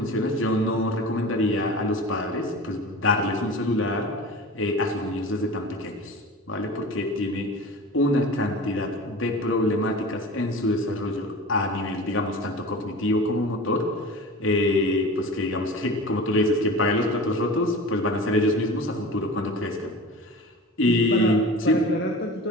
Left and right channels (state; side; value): normal; both; correlation 0.35